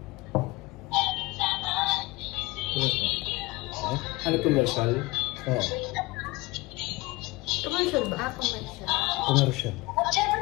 Ano commercial? Oo. Commercial ba? Commercial. Commercial. at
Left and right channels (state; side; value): quieter; right; 22.3 dB